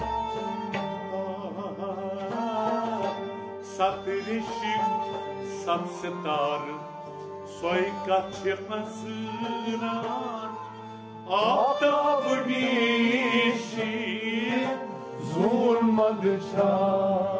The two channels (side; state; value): both; identical; correlation 1.00